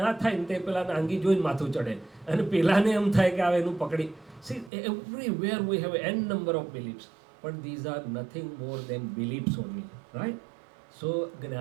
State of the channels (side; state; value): left; drops out; at 4.7 s